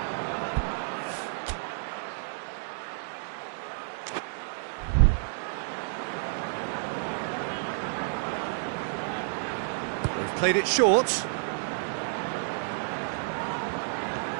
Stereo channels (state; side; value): silent; left; digital silence